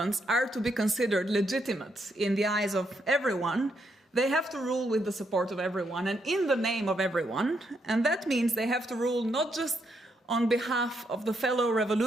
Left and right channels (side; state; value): both; normal; correlation 0.77